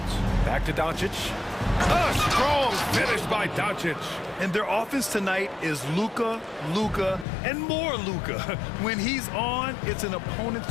back to Doncic. A strong finish by Doncic. And their offense tonight is Luka, Luka, and more Luka. When he's on, it's an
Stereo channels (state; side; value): drops out; right; at 7.2 s